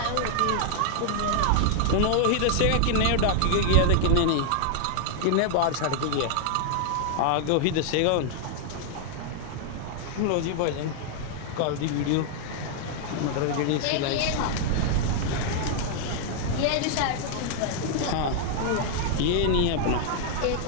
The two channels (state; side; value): different; both; correlation 0.00